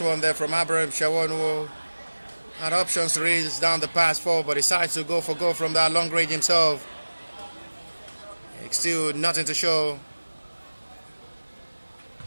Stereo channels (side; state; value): both; inverted; correlation -1.00